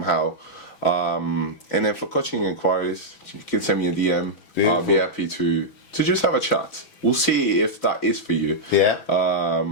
And then for coaching inquiries, you can send me a DM. Beautiful. I'll be happy to just have a chat. We'll see if that is for you. Yeah.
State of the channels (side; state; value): right; late; 6.1 ms